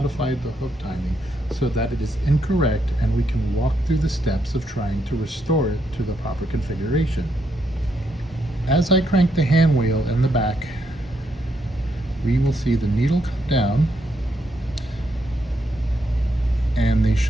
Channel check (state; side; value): normal; both; correlation 0.78